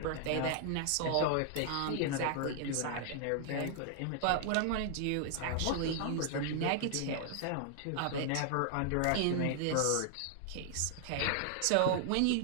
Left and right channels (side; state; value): both; different; correlation 0.00